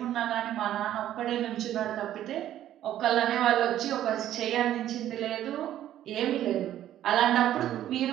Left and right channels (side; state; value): left; quieter; 12.1 dB